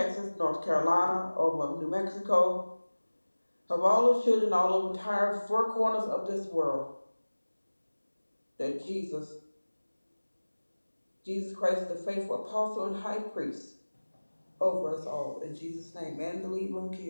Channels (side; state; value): both; inverted; correlation -1.00